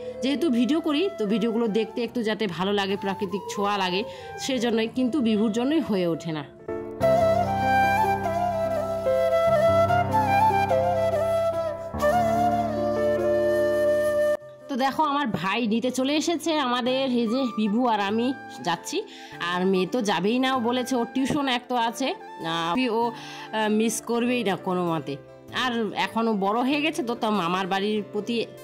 যেহেতু ভিডিও করি তো ভিডিওগুলো দেখতে একটু যাতে ভালো লাগে, প্রাকৃতিক ছোঁয়া লাগে, সেজন্যই, কিন্তু বিভুর জন্যই হয়ে ওঠে না। তো দেখো আমার ভাই নিতে চলে এসেছে আমাদের, এই যে বিভু আর আমি যাচ্ছি, আর মেয়ে তো যাবেই না, ও বলেছে ওর টিউশন এক তো আছে, ও মিস করবেই না কোনো মতে। আর এখনও বড় হয়ে গেছে তো, মামার বাড়ির প্রতি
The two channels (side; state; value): both; identical; correlation 1.00